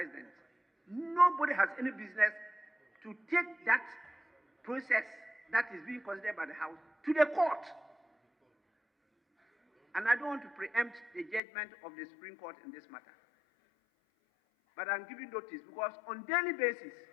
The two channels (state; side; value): drops out; right; at 11.4 s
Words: nobody has any business to take that process that is being considered by the House to the court. And I don't want to preempt the judgment of the Supreme Court in this matter. But I'm giving notice because on daily basis,